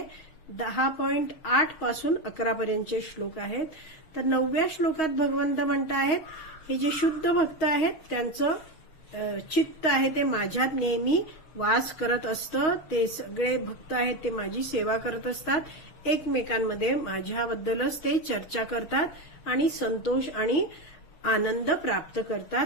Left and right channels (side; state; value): right; late; 6.7 ms